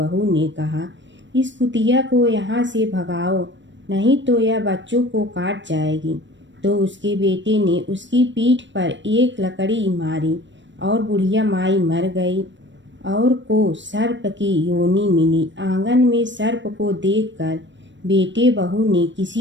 ने कहा, इस कुतिया को यहाँ से भगाओ, नहीं तो यह बच्चों को काट जाएगी। तो उसके बेटे ने उसकी पीठ पर एक लकड़ी मारी और बुढ़िया माई मर गई और को सर्प की योनि मिली। आंगन में सर्प को देखकर बेटे बहू ने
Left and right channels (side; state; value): left; late; 0.53 ms